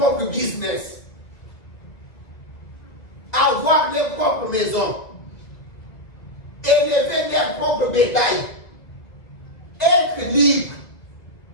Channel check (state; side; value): late; right; 2.0 ms